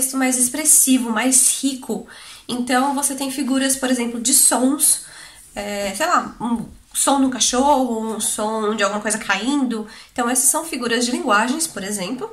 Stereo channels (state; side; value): identical; both; correlation 1.00